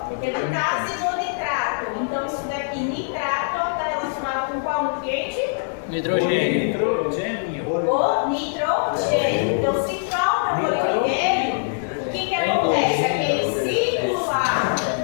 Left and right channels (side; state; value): right; silent; digital silence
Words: redutase do nitrato. Então, isso daqui, nitrato, está relacionado com qual nutriente? Nitrogênio. O nitrogênio. Então, se falta molibdênio, o que acontece? Aquele ciclo lá